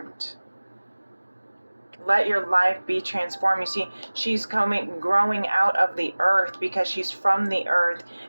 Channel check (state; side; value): inverted; both; correlation -1.00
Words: Let your life be transformed. You see, she's growing out of the earth because she's from the earth.